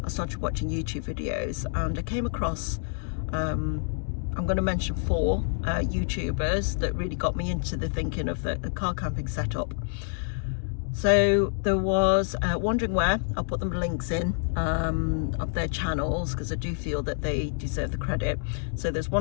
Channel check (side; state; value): right; silent; digital silence